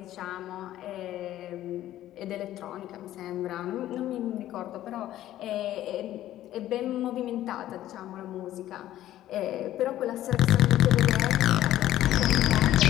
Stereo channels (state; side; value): quieter; right; 13.4 dB